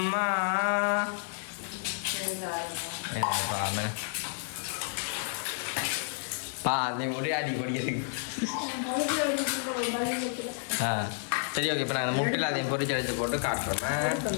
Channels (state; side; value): silent; right; digital silence